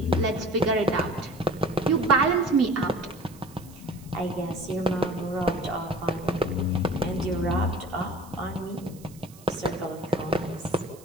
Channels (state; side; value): noise; right; hiss, 23 dB below the sound